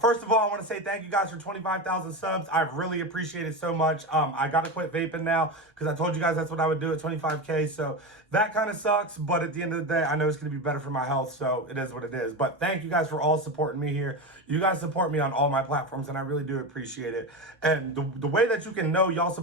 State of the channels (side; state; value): both; normal; correlation 0.20